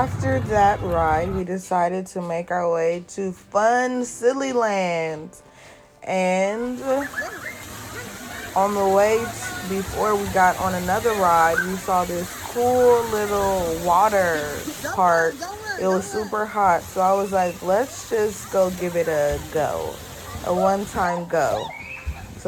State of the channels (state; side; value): identical; both; correlation 1.00